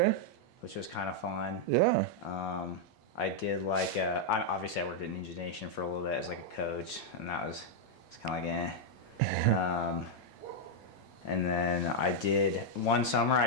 which was kind of fun. Yeah. I did like obviously I worked at Ninja Nation for a little bit as like a coach, and that was it's kind of like and then I did one summer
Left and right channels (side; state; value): both; normal; correlation -0.02